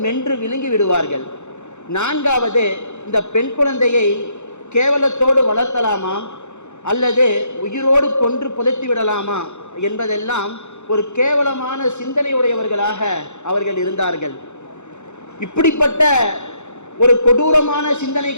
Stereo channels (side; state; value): right; late; 0.83 ms